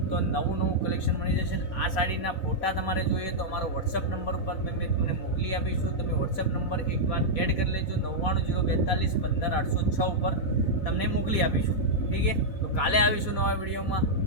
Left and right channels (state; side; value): late; right; 4.0 ms